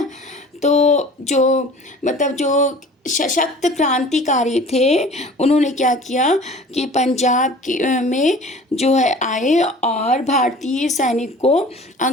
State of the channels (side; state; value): both; normal; correlation 0.45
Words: तो जो सशक्त क्रांतिकारी थे, उन्होंने क्या किया कि पंजाब में जो है आए और भारतीय सैनिक को